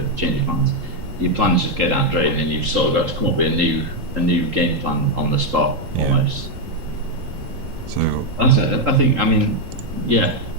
change of plans. Your plans just go down drain, and you've sort of got to come up with a new game plan on the spot Yeah. almost. So That's it. I think. I mean, yeah.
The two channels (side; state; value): left; late; 3.8 ms